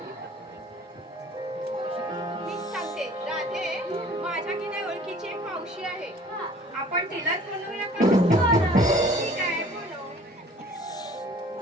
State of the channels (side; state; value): both; normal; correlation 0.51